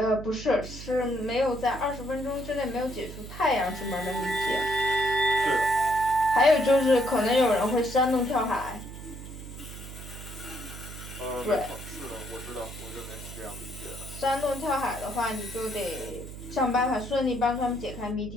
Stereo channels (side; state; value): right; noise; hum, 12 dB below the sound